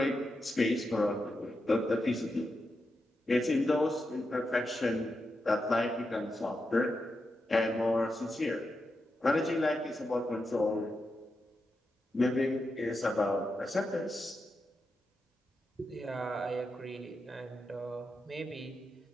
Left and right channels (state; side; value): normal; both; correlation 0.87